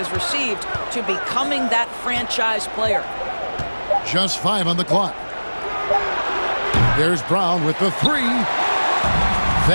received to becoming that franchise player. Just 5 on the clock. There's Brown with the 3.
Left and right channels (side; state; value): both; inverted; correlation -1.00